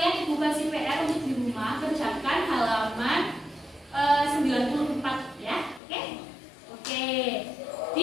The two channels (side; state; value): right; drops out; at 5.8 s